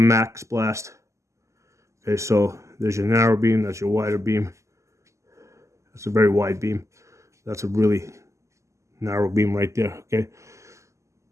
blast. Okay, so there's your narrow beam, that's your wider beam. That's a very wide beam. That's a really narrow beam right there. Okay.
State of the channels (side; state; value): left; late; 0.14 ms